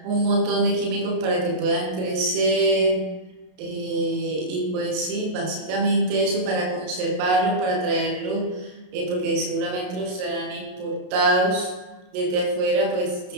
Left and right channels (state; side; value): late; left; 33 ms